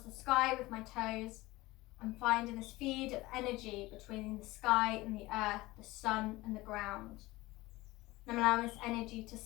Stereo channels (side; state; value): right; quieter; 19.8 dB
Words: the sky with my toes, I'm finding this feed of energy between the sky and the earth, the sun and the ground. And I'm allowing this energy to